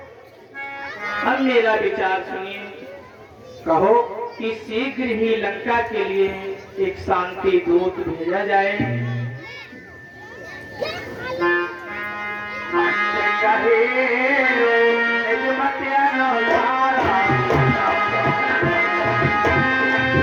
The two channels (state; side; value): identical; both; correlation 1.00